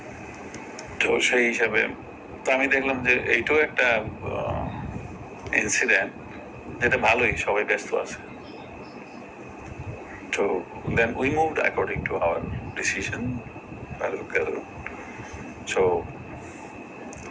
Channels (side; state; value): both; identical; correlation 1.00